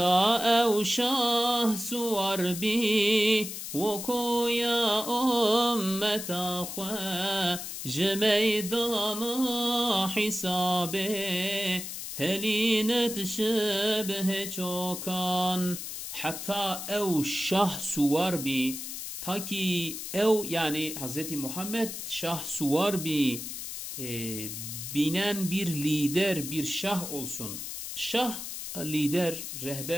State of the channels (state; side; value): noise; left; hiss, 7 dB below the sound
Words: evşah suvar bi ve koya ümmeta khwa meydana hisabe helinet şebhe çokan hatta ev şah suvar bi ta ki ev yani Hz. Muhammed şah suvar bi binen bir lider bir şah olsun. Şah lider,